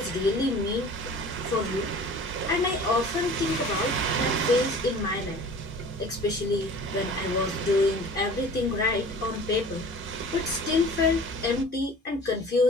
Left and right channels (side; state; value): both; normal; correlation 0.43